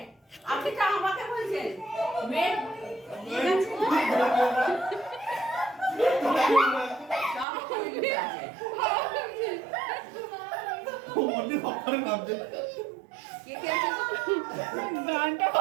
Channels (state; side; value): drops out; left; at 7.5 s